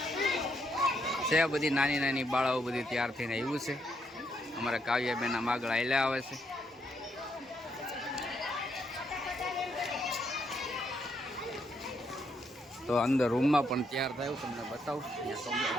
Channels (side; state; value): both; normal; correlation 0.76